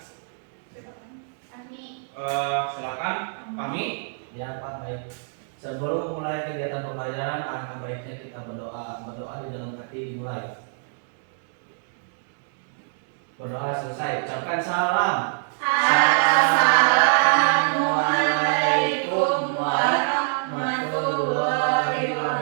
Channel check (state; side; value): silent; left; digital silence